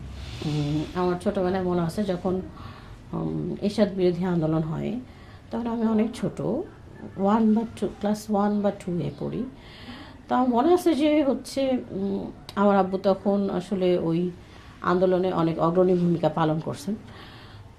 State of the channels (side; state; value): both; identical; correlation 1.00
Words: আমার ছোটোবেলায় মনে আছে যখন এরশাদ বিরোধী আন্দোলন হয়, তখন আমি অনেক ছোট, ক্লাস 1 বা 2 এ পড়ি। তা আমার মনে আছে যে হচ্ছে আমার আব্বু তখন আসলে ওই আন্দোলনে অনেক অগ্রণী ভূমিকা পালন করছেন।